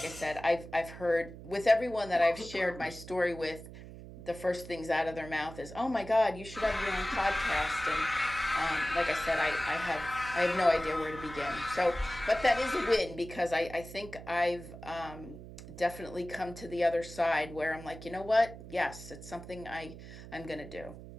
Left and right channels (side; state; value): right; noise; hum, 14 dB below the sound